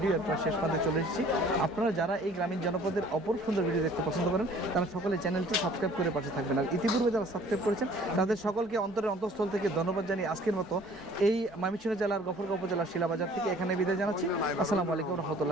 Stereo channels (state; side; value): normal; both; correlation 0.53